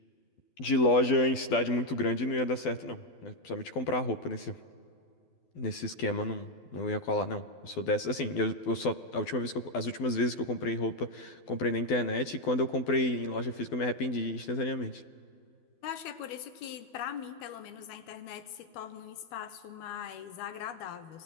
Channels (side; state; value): right; late; 12 ms